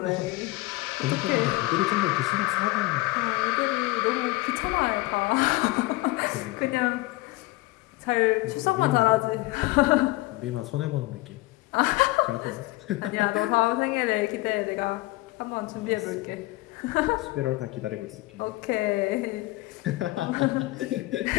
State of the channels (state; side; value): quieter; right; 20.6 dB